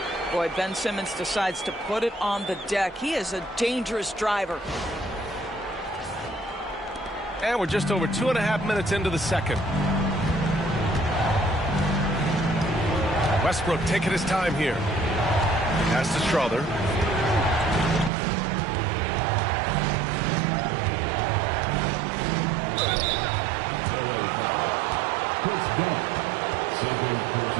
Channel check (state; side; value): drops out; left; at 18.1 s